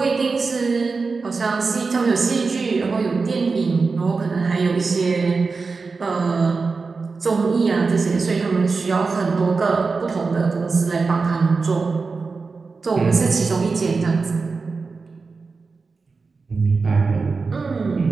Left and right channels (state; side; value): quieter; left; 4.4 dB